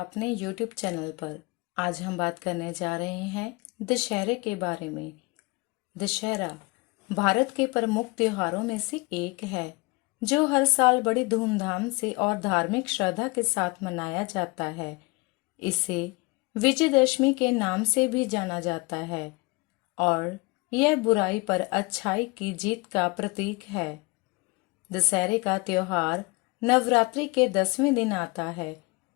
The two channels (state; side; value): quieter; right; 26.4 dB